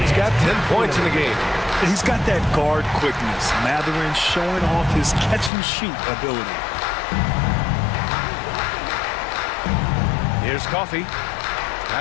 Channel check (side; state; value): right; drops out; at 5.5 s